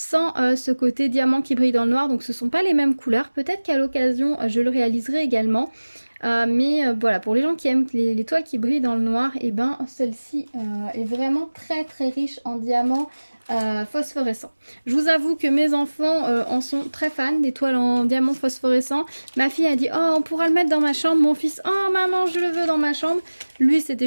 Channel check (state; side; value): inverted; both; correlation -1.00